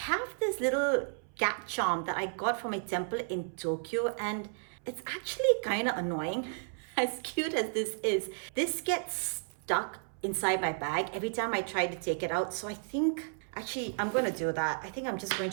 this little cat charm that I got from a temple in Tokyo, and it's actually kind of annoying. As cute as this is, this gets stuck inside my bag every time I try to take it out. So I think actually I'm going to do that. I think I'm just going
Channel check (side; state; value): left; silent; 56 dB below the other